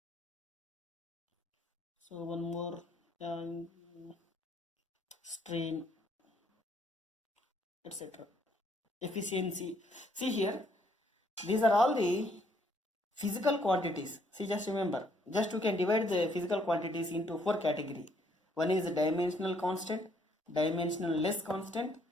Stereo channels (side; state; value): both; normal; correlation 0.68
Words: So one more, strain, etc. Efficiency. See here, these are all the physical quantities. See, just remember, just we can divide the physical quantities into 4 categories. One is dimensional constant, dimensional less constant,